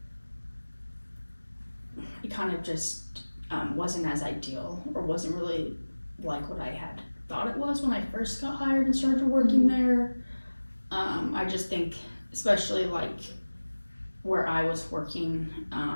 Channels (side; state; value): both; inverted; correlation -1.00